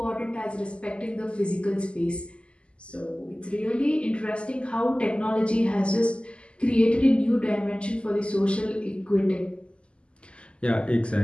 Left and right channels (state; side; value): late; right; 0.054 ms